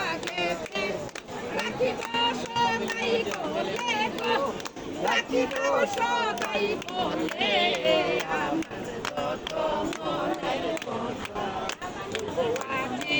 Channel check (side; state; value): both; identical; correlation 1.00